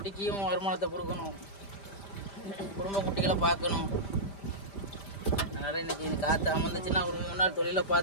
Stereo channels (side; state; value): right; late; 5.0 ms